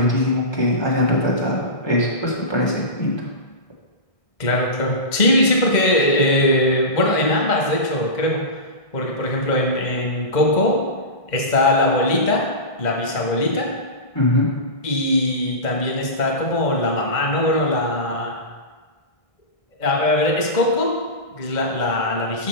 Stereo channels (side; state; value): right; late; 1.6 ms